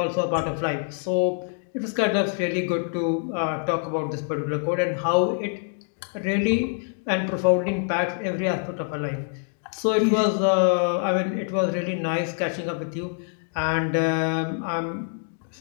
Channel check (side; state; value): right; silent; 62 dB below the other